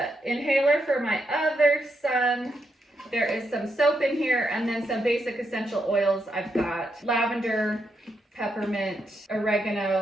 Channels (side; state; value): both; normal; correlation 0.81